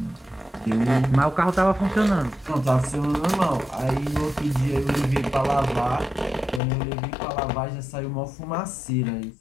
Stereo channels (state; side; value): drops out; right; at 6.6 s